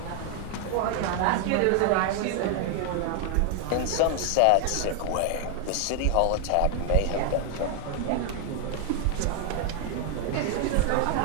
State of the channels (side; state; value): both; different; correlation 0.00